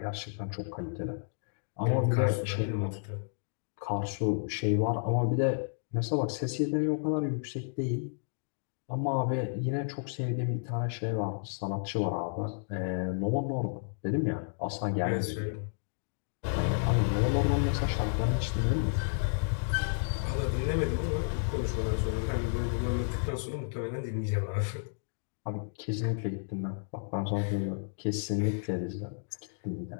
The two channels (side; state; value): right; silent; digital silence